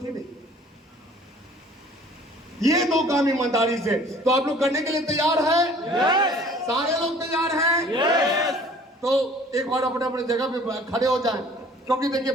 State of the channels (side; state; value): both; normal; correlation 0.52